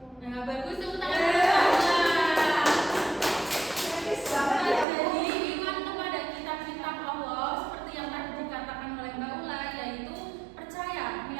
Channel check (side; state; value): left; drops out; at 4.9 s